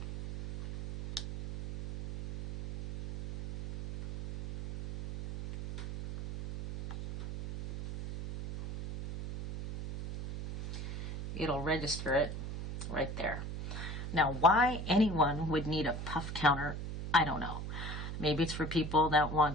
it'll register it right there. Now, why anyone would need a puff counter, I don't know. Maybe it's for people that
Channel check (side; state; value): right; noise; hum, 7 dB below the sound